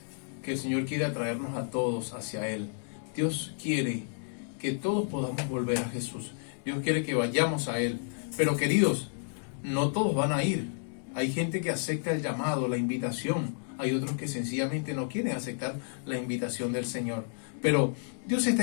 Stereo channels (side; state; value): right; silent; digital silence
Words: que el Señor quiere atraernos a todos hacia Él. Dios quiere que todos podamos volver a Jesús. Dios quiere que vayamos a Él. Pero queridos, no todos van a ir. Hay gente que acepta el llamado, la invitación. Hay otros que sencillamente no quieren aceptar la invitación del Señor. Pero Dios